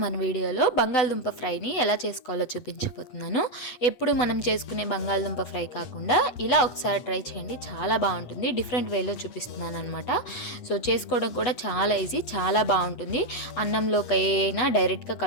మన వీడియోలో బంగాళదుంప ఫ్రైని ఎలా చేసుకోవాలో చూపించబోతున్నాను. ఎప్పుడు మనం చేసుకునే బంగాళదుంప ఫ్రై కాకుండా ఇలా ఒకసారి ట్రై చేయండి, చాలా బాగుంటుంది. డిఫరెంట్ వేలో చూపిస్తున్నాను అనమాట. సో చేసుకోవడం కూడా చాలా ఈజీ, చాలా బాగుంటుంది. అన్నంలోకి అయినా డైరెక్ట్గా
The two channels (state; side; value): late; right; 8.3 ms